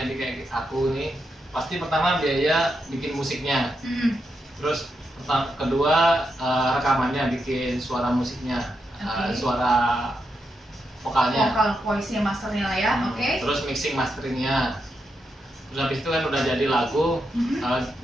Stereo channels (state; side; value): normal; both; correlation 0.84